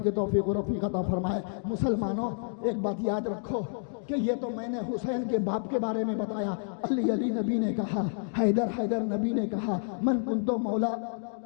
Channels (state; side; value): silent; right; 58 dB below the other